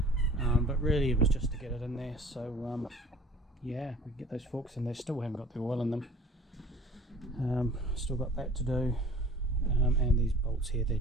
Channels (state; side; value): normal; both; correlation 0.49